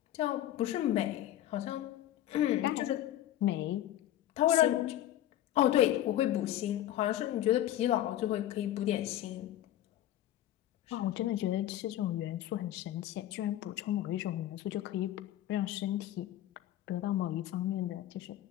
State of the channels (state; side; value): quieter; right; 12.9 dB